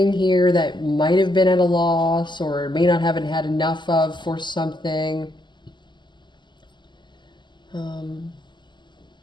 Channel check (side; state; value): right; late; 0.22 ms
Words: here that might have been at a loss or may not haven't had enough of for something. I